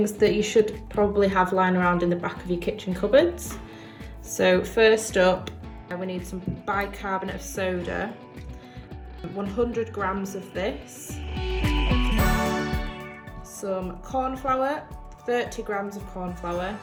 that you should probably have lying around in the back of your kitchen cupboards. So first up we need some bicarbonate of soda, 100 grams of this, some corn flour, 30 grams of corn flour,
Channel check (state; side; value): identical; both; correlation 1.00